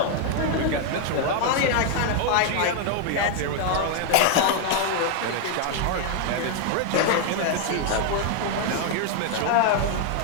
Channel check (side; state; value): both; different; correlation 0.01